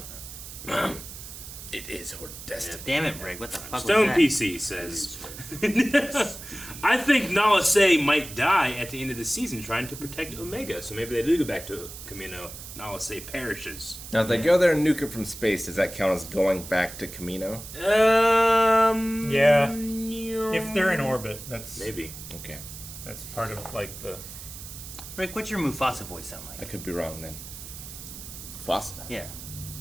It is her destiny. Damn it, Rick. What the fuck Stone was that? PC says, I think Nala Se might die at the end of the season trying to protect Omega. So maybe they do go back to Kamino. Nala Se perishes. Now, if they go there and nuke it from space, does that count as going back to Kamino? Yeah. If they're in orbit, that's Maybe. Okay. That's part of like the. Rick, what's your Mufasa voice sound I like? could be wrong then. Fossa. Yeah.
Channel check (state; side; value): noise; right; hiss, 12 dB below the sound